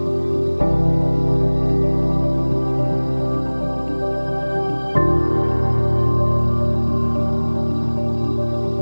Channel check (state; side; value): inverted; both; correlation -1.00